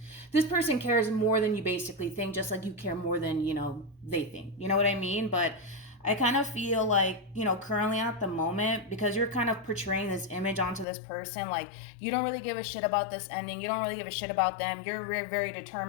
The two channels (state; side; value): drops out; right; at 10.9 s